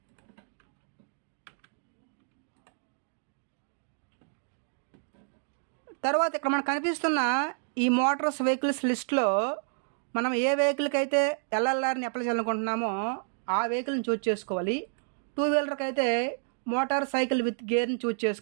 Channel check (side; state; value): left; silent; digital silence